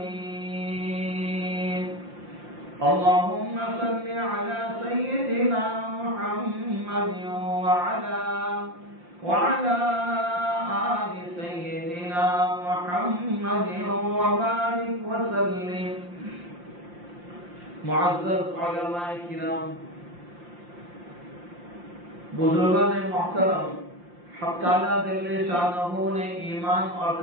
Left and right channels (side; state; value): left; late; 5.7 ms